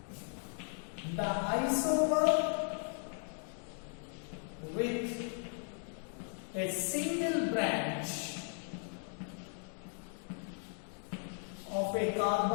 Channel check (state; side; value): silent; right; 53 dB below the other